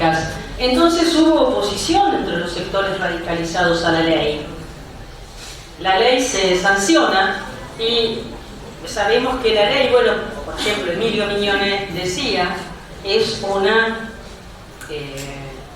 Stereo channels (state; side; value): identical; both; correlation 1.00